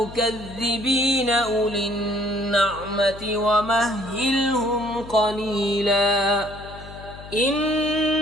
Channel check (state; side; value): noise; left; hum, 16 dB below the sound